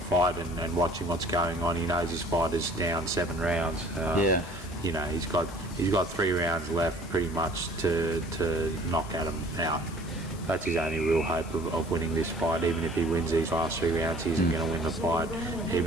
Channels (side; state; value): left; noise; hiss, 20 dB below the sound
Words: fight and watching what's going on, he knows his fight is down 7 rounds. He's got 3 rounds left pretty much to knock Adam out. That's his only real hope of winning this fight. Even if he wins these last 3 rounds, he isn't going to win the fight.